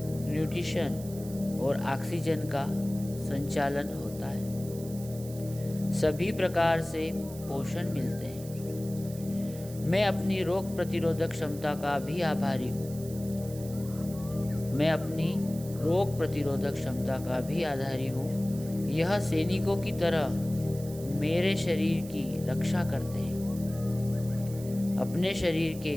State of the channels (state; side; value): noise; right; hiss, 17 dB below the sound